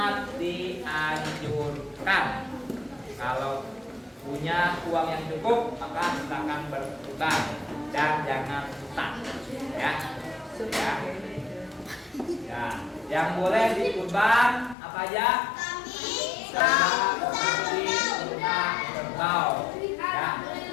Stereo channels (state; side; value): drops out; right; at 14.8 s